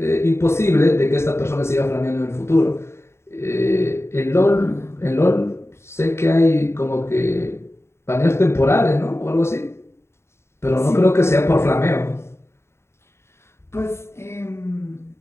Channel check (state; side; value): late; right; 0.13 ms